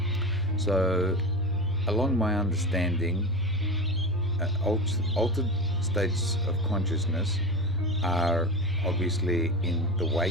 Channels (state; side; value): normal; both; correlation 0.24